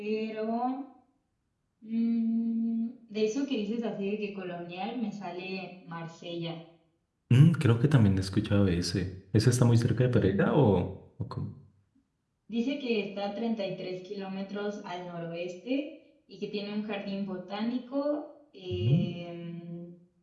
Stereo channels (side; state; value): both; identical; correlation 1.00